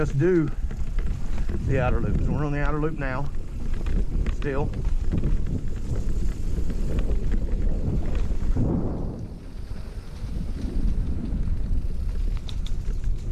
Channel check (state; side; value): identical; both; correlation 1.00